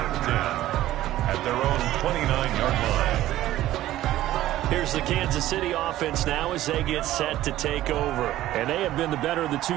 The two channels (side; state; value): left; quieter; 14.4 dB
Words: At their own 29-yard line. Here's the Kansas City offense now as they get set to take over. And they have been the better of the